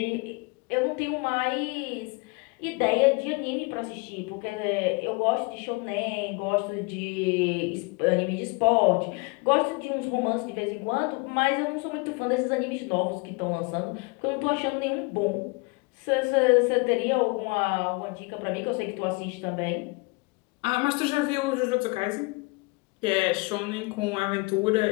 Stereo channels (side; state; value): right; quieter; 28.1 dB